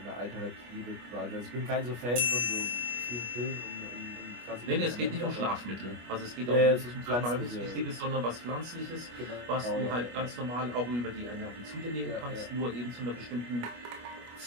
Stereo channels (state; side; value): late; left; 25 ms